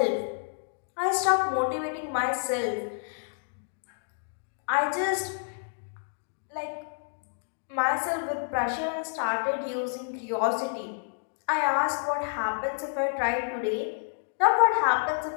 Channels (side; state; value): right; silent; digital silence